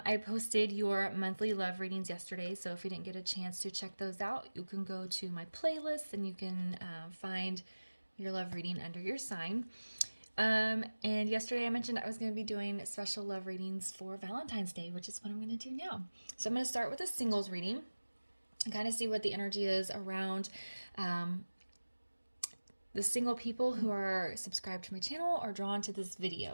posted your monthly love readings yesterday, so if you didn't get a chance to check those out, you can go to my playlist and you can find your love reading under your sign. And yesterday I mentioned I was going to be doing special love readings for Valentine's Day, which is what I'm going to do now. So I'm going to start with a singles reading and kind of see what the energy is around the single people who are subscribed to my channel or drawn to this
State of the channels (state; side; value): inverted; both; correlation -1.00